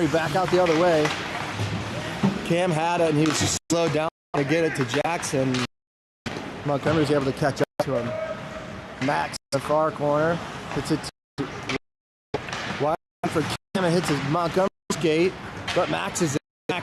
back out the other way. Cam had it, and he was just slowed down to get it to Jackson. Montgomery was able to catch up to him. Max in the far corner. Hits it to wide for Cam. It hits his Montgomery skate, but Max is in.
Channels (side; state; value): both; identical; correlation 1.00